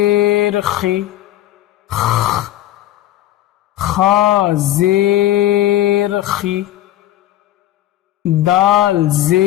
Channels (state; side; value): quieter; right; 13.6 dB